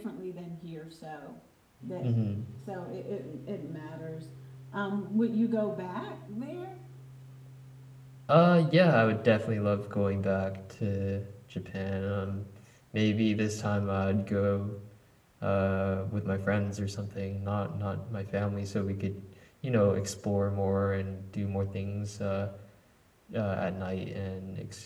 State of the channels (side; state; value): both; identical; correlation 1.00